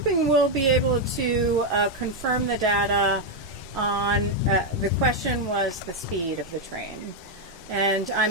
we'll be able to confirm the data on, the question was the speed of the train. And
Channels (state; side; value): normal; both; correlation 0.02